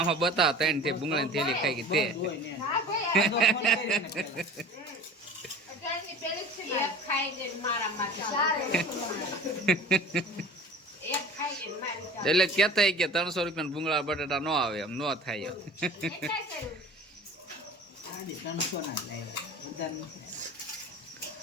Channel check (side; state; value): both; normal; correlation 0.40